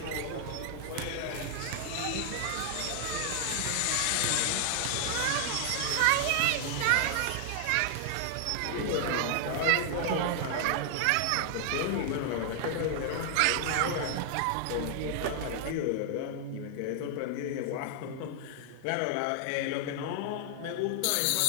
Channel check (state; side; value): different; both; correlation 0.00